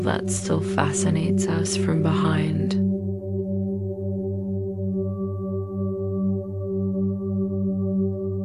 that still fascinates us from behind.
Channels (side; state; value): both; identical; correlation 1.00